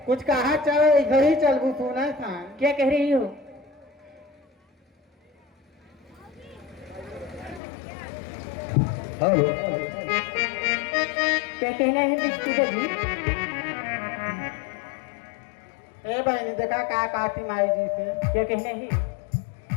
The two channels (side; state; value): right; drops out; at 7.6 s